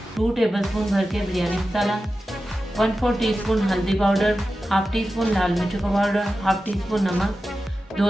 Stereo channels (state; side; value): normal; both; correlation 0.93